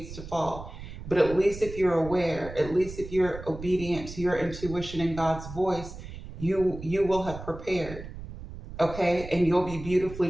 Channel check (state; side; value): noise; right; rumble, 12 dB below the sound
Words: to fall. But at least if you're aware, at least if you're obedient to your intuition and God's voice, you will have prepared, okay? And you'll be beautifully